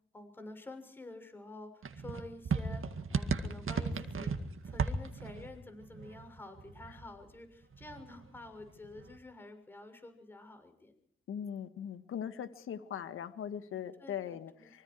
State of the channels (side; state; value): both; normal; correlation 0.57